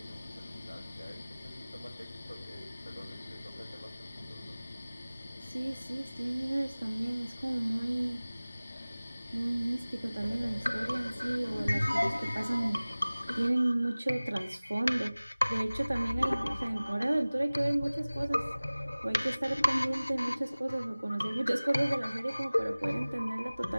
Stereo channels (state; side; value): inverted; both; correlation -0.99